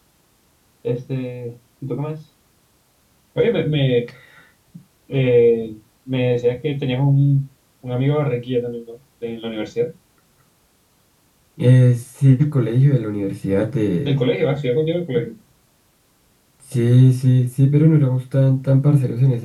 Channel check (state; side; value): identical; both; correlation 1.00